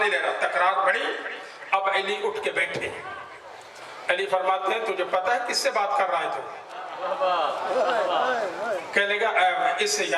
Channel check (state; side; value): identical; both; correlation 1.00